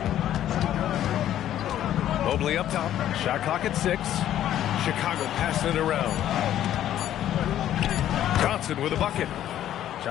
Mobley up top. Shot clock at 6. Chicago passing it around. Johnson with a bucket.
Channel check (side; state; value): right; quieter; 11.7 dB